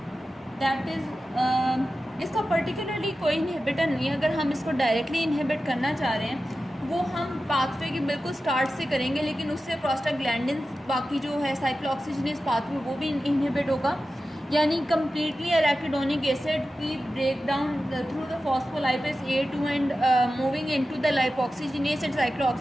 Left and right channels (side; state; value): both; normal; correlation 0.93